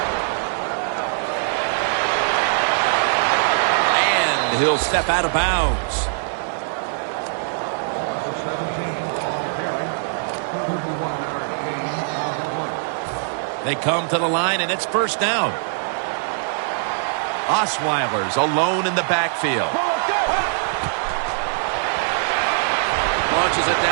And he'll step out of bounds. They come to the line, and it's first down. Osweiler's alone in the backfield. Launches it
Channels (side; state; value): left; silent; digital silence